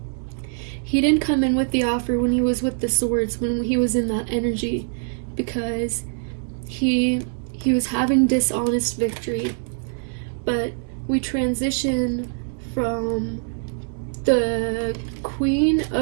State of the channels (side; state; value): left; silent; digital silence